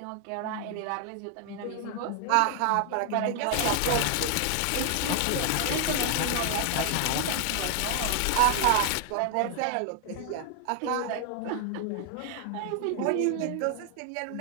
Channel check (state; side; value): different; both; correlation 0.00